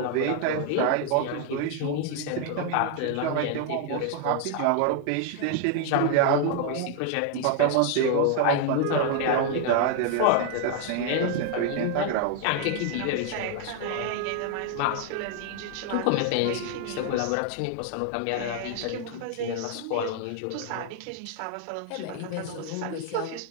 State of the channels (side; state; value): both; different; correlation 0.00